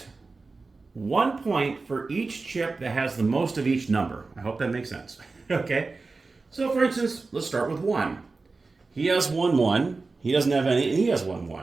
1 point for each chip that has the most of each number. I hope that makes sense. Okay? So, for instance, let's start with 1. He has 1 1. He doesn't have any, and he has 1 1.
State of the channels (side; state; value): left; quieter; 3.9 dB